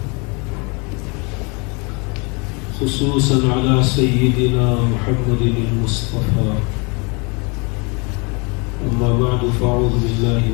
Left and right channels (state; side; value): quieter; right; 31.0 dB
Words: خصوصا على سيدنا محمد المصطفى أما بعد فأعوذ بالله